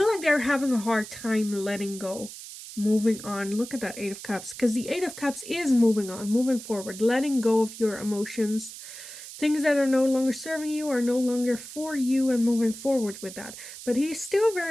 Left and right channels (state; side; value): noise; right; hiss, 13 dB below the sound